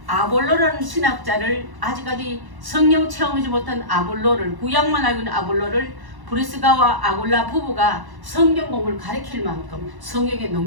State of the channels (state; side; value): late; left; 1.1 ms